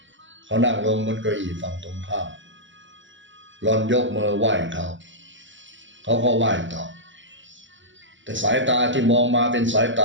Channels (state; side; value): late; left; 0.55 ms